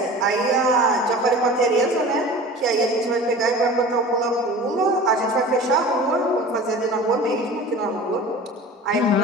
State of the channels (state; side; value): normal; both; correlation 0.38